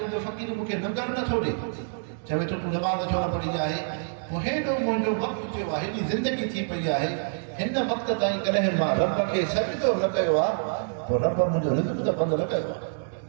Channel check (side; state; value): left; silent; digital silence